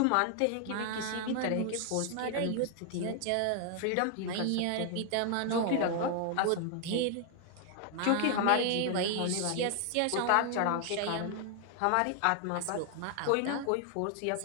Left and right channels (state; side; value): different; both; correlation 0.00